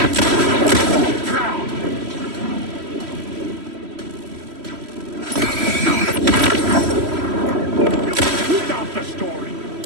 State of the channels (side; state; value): left; late; 3.1 ms